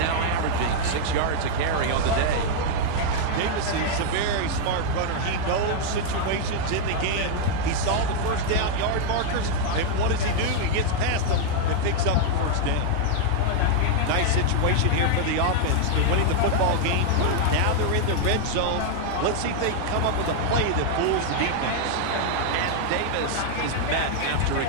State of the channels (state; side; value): different; both; correlation 0.00